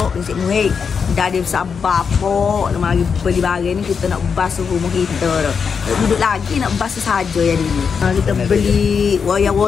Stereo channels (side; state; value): right; quieter; 6.1 dB